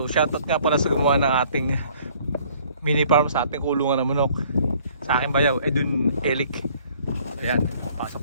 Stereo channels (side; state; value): both; inverted; correlation -0.59